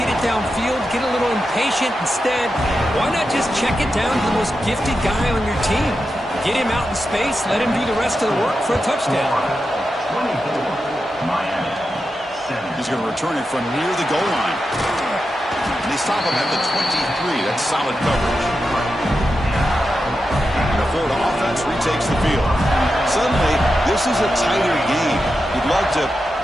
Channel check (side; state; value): both; normal; correlation 0.89